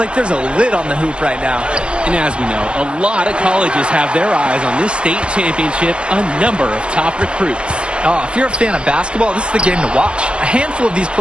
there's a lid on the hoop right now. And as we know, a lot of colleges have their eyes on this state championship, a number of top recruits. Oh, if you're a fan of basketball, this is the game to watch. A handful of these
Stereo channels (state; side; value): late; left; 0.051 ms